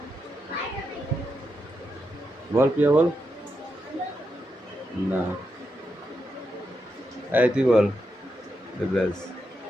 বল প্রিয়া, বল। না, তুই বল। ব্যাস,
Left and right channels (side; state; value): both; normal; correlation 0.85